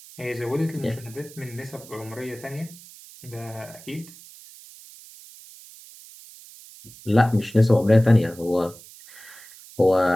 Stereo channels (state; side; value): noise; right; hiss, 20 dB below the sound